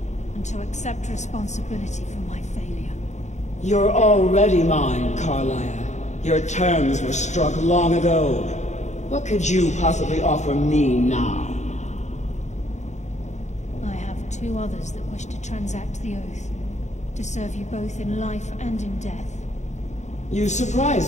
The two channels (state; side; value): late; right; 0.34 ms